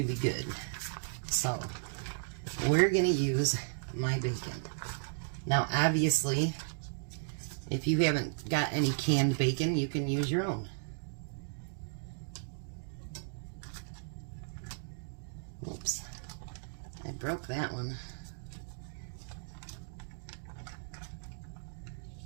good. So we're going to use my bacon. Now obviously, if you haven't got any canned bacon, you can use your own. Oops, I broke that one.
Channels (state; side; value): silent; left; digital silence